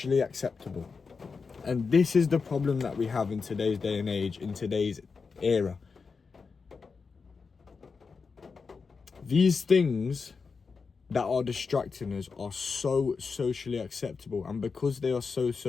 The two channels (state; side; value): quieter; right; 5.0 dB